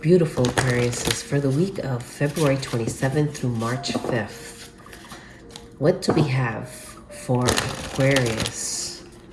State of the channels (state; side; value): identical; both; correlation 1.00